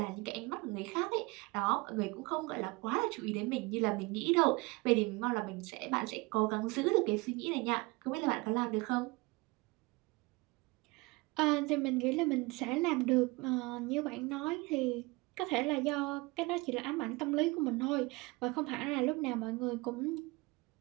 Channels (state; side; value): quieter; left; 24.7 dB